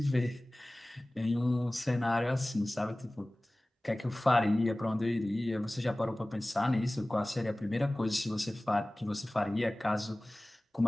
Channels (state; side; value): normal; both; correlation 0.98